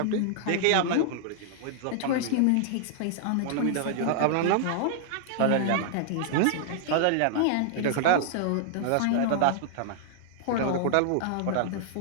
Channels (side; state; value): both; different; correlation -0.01